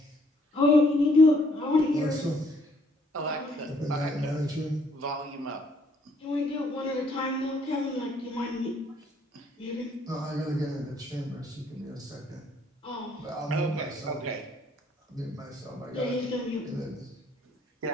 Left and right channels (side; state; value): both; normal; correlation 0.66